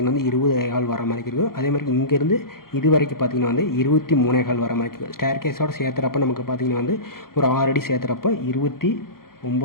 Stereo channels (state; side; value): late; right; 0.93 ms